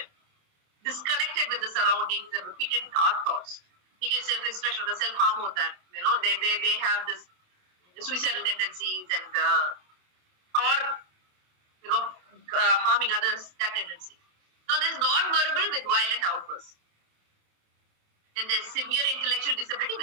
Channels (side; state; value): left; late; 28 ms